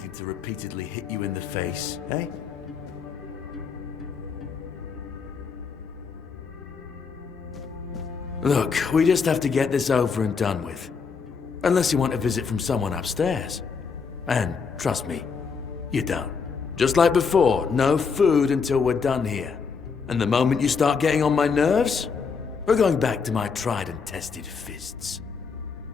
to repeatedly hit you in the face, eh? Look, we just have to get this over and done with. Unless you want a visit from someone upstairs. And trust me, you don't. Just like before, no food until we're done here. And the moment you start getting on my nerves, we're going back to my tried and tested fists.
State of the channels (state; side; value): quieter; right; 5.5 dB